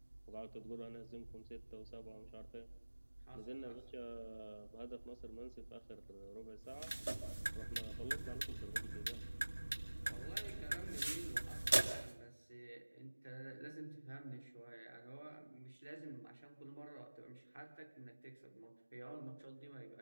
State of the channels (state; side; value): inverted; both; correlation -1.00